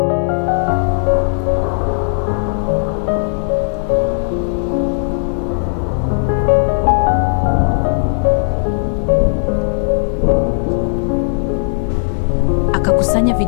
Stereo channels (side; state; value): right; silent; 64 dB below the other